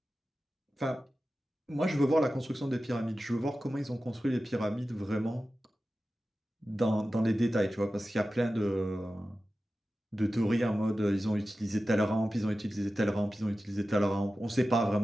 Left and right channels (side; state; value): both; normal; correlation 0.94